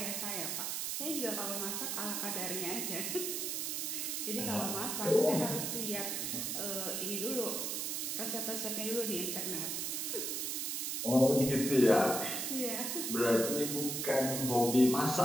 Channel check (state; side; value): noise; right; hiss, 1 dB below the sound